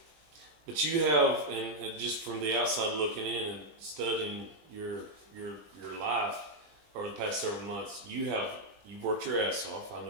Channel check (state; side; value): late; left; 20 ms